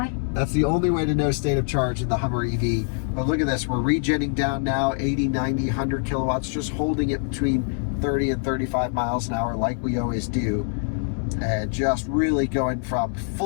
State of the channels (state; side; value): silent; right; 58 dB below the other